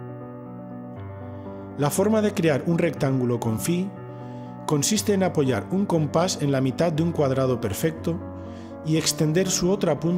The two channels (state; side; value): identical; both; correlation 1.00